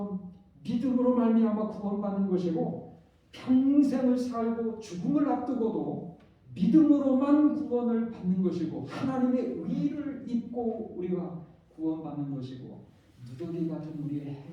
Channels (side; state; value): both; identical; correlation 1.00